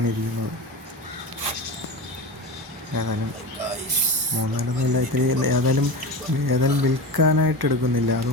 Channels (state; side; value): normal; both; correlation 0.26